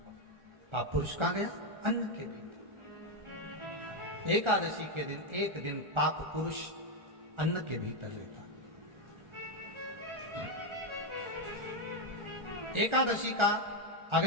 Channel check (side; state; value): left; late; 1.4 ms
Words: पाप पुरुष कहां गया? अन्न के भीतर। एकादशी के दिन एक दिन पाप पुरुष अन्न के भीतर रहता। एकादशी का